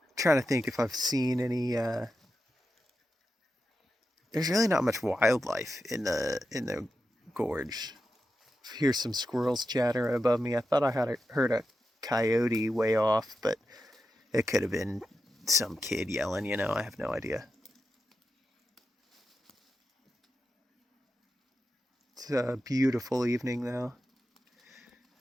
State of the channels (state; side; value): normal; both; correlation 0.89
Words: I'm trying to think if I've seen any... There's really not much wildlife in the gorge. Hear some squirrels chatter above me. I thought I had heard a coyote way off, but it could have been some kid yelling, you know, I have no idea. It's a beautiful evening though.